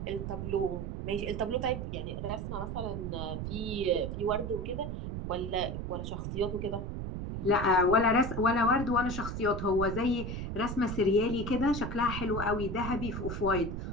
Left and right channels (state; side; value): noise; right; rumble, 5 dB below the sound